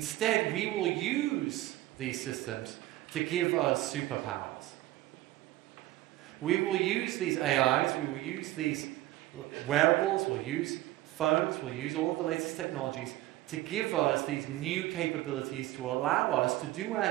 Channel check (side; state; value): left; quieter; 16.5 dB